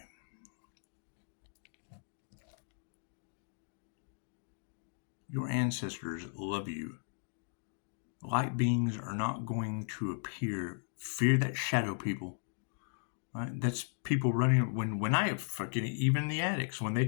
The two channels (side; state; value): right; silent; digital silence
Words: your ancestors love you, light beings are not going to appear. Fear that shadow people. Right? That's people running. When I fucking, even the addicts, when they